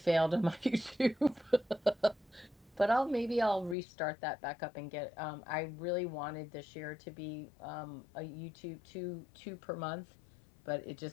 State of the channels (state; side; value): drops out; right; at 3.8 s